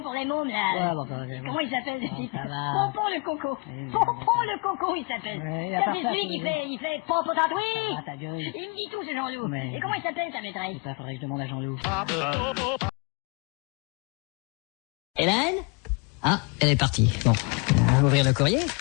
pour les mômes, là. Ouais, bon, bah, Comment il s'appelle, ce Bon, type? ça va. Pompon le Coco. Oui, Pompon le Coco, il s'appelle. Ouais, à Ça, part c'est ça, celui qui c'est- fait Pompon tatoué. Ah, ta gueule. Il me dit tout, ce Jean-Loup. Mais- Et comment il s'appelle, ta maîtresse? Ça, faudrait que je demande à Jean-Loup. Hélène? Ah, elle est partie. Bon, ouvrir le courrier.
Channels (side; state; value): right; quieter; 31.0 dB